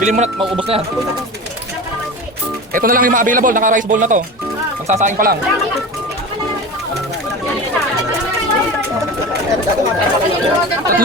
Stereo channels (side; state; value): both; normal; correlation 0.30